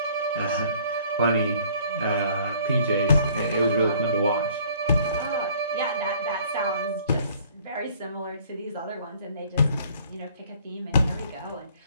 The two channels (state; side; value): inverted; both; correlation -0.57